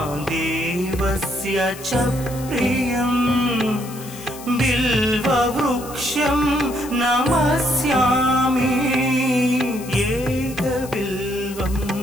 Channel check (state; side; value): noise; left; hiss, 16 dB below the sound